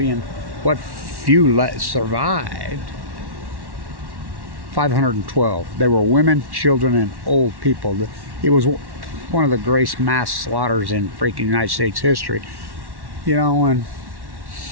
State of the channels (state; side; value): late; left; 1.1 ms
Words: what few survived. 512. They were women, children, and old people. It was one of the greatest mass slaughters in freaking United States history. You know, and